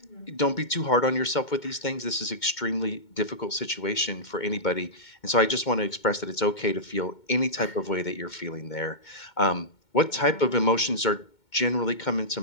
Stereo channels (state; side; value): late; right; 2.2 ms